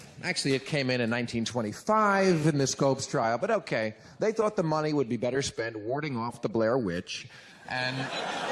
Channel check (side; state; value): both; identical; correlation 1.00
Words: Actually, it came in 1925 in the Scopes trial, but okay. They thought the money would be better spent warding off the Blair Witch and